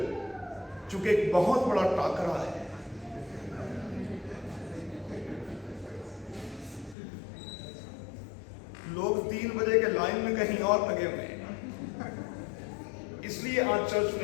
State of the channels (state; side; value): drops out; right; at 7.0 s